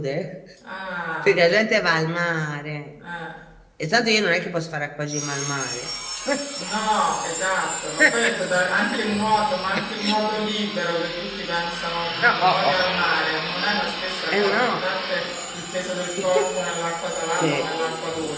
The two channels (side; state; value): both; identical; correlation 1.00